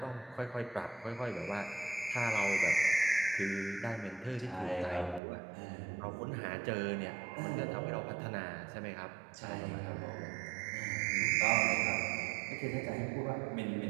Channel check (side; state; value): left; drops out; at 5.2 s